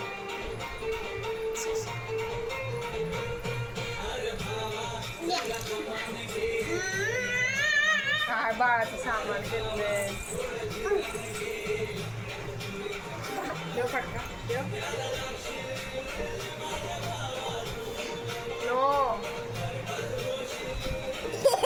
काय बाळाचं सामान घेतलंय. देव फटका देव. नो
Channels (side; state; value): both; identical; correlation 1.00